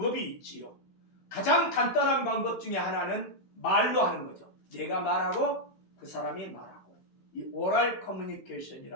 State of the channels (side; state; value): right; late; 16 ms